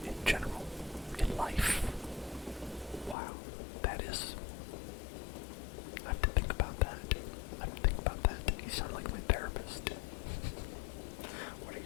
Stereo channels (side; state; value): right; drops out; at 3.2 s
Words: in general? In life? Wow, that is... I have to think about that. I have to think about that. You sound like my therapist.